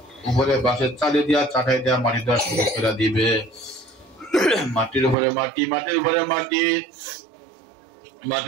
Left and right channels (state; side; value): drops out; left; at 5.2 s